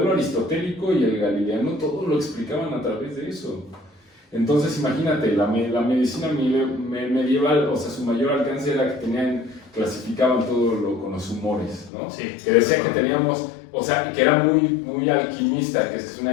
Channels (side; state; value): right; drops out; at 11.9 s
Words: aristotélico y el galileano todo lo explicaban a través de eso. Entonces imagínate, la medicina medieval, o sea, su mayor alcance era que clasificaban todo con los humores, ¿no? Sí. Que decía que teníamos, o sea, que era muy alquimista, que es